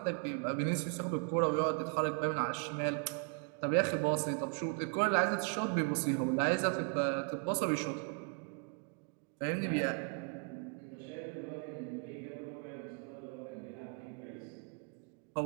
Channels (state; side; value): quieter; left; 36.1 dB